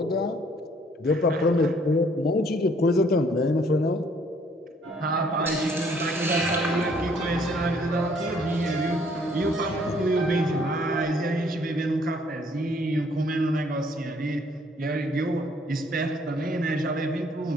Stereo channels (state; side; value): normal; both; correlation 0.63